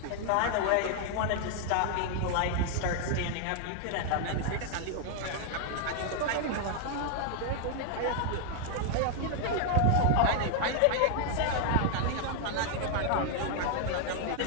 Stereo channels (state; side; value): different; both; correlation 0.00